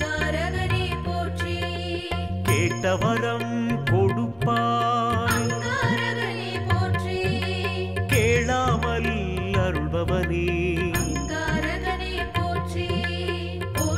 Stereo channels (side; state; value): both; identical; correlation 1.00